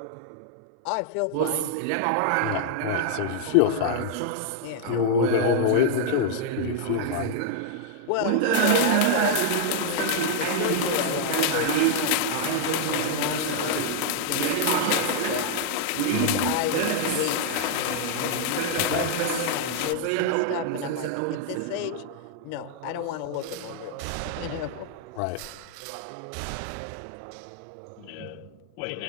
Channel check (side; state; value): both; different; correlation -0.01